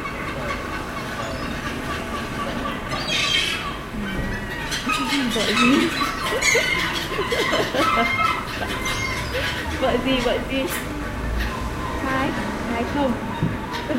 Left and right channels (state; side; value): identical; both; correlation 1.00